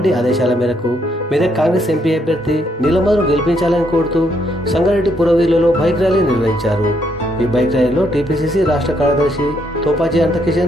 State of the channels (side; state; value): both; normal; correlation 0.73